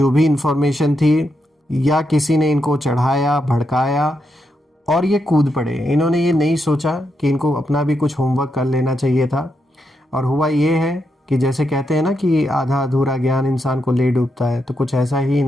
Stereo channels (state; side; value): normal; both; correlation 0.83